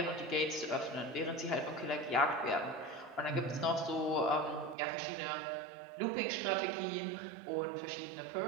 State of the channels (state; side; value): drops out; left; at 4.8 s